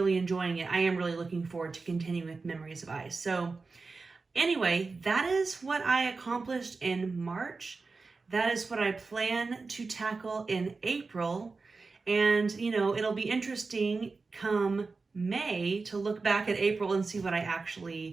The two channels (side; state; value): left; quieter; 4.1 dB